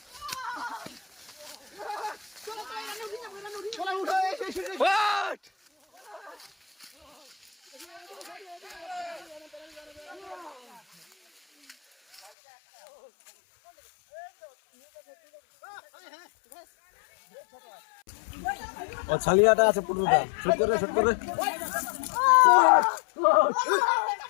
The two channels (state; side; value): drops out; right; at 12.3 s